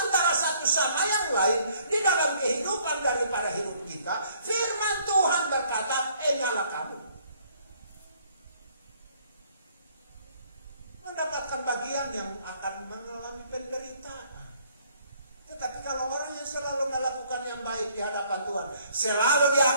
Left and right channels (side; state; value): both; inverted; correlation -0.62